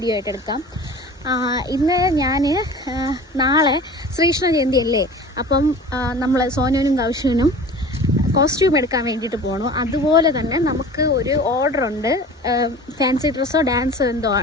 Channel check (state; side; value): normal; both; correlation 0.40